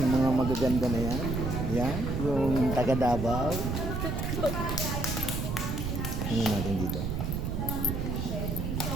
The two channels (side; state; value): right; noise; rumble, 2 dB below the sound